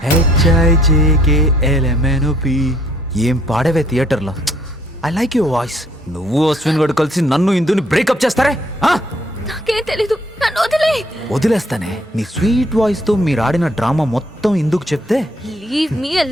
ఏం పాడవే థియేటర్లో. I like your voice. నువ్వు అశ్విన్ గడు కలిసి నన్ను ఇందుని బ్రేకప్ చేస్తారే? నాకేం తెలీదు, నన్ను వదిలే. వదిలేస్తానే. నీ స్వీట్ వాయిస్ తో మీరు ఆడిన డ్రామా మొత్తం ఇందుకు చెప్తే లీవ్ మీ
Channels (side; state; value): both; normal; correlation 0.64